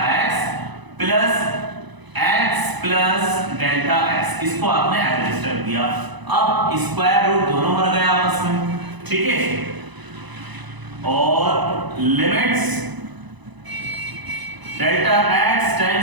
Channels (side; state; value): left; late; 1.0 ms